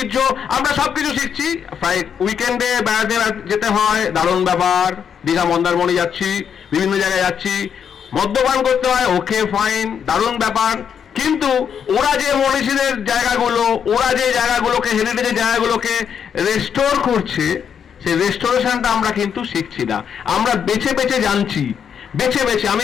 আমরা সবকিছু শিখছি, প্রায় উইকেন্ডে বেড়াতে যেতে হয়, দারুণ ব্যাপার, দীঘা মন্দারমণি যাচ্ছি, বিভিন্ন জায়গায় যাচ্ছি, মদ্যপান করতে হয়, ওকে ফাইন, দারুণ ব্যাপার, কিন্তু ওরা যে মনীষীদের জায়গাগুলো, ওরা যে জায়গাগুলোকে, হেরিটেজের জায়গাগুলোকে রেস্টোর করছে, সেই রেস্টোরেশনটা আমরা কিন্তু শিখছি না। আমরা বেছে বেছে জানছি, বেছে বেছে। আমি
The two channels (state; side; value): quieter; right; 7.7 dB